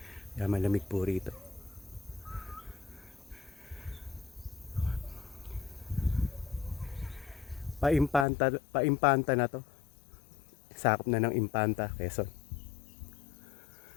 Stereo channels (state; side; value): drops out; right; at 8.2 s